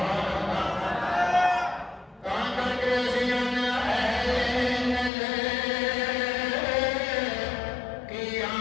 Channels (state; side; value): drops out; right; at 5.1 s